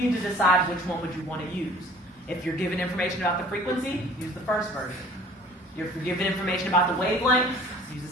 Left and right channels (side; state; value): both; normal; correlation 0.50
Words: to decide which one would you want to use. If you're given information about the frequency, use the first version. If you're given information about the wavelength, use the